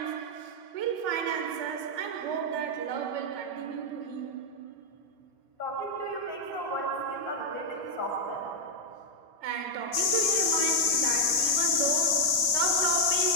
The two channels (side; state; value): right; late; 3.4 ms